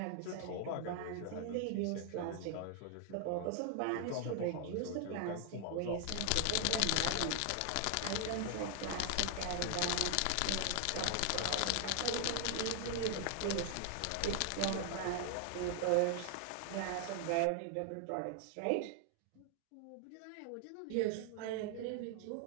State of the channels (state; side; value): different; both; correlation 0.00